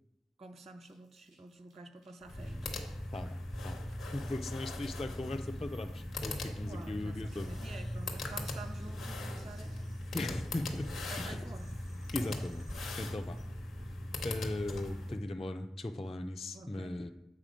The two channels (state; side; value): normal; both; correlation 0.91